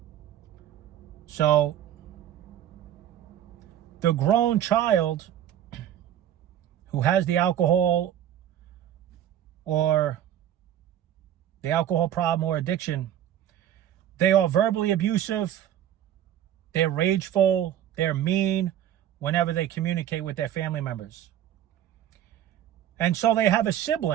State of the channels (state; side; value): quieter; left; 11.0 dB